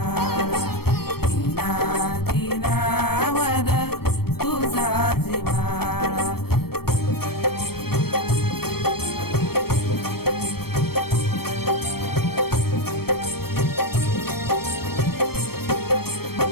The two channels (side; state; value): right; late; 0.95 ms